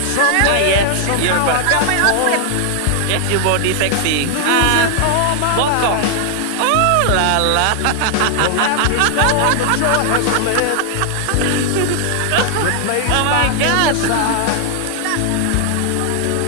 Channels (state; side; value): different; both; correlation 0.00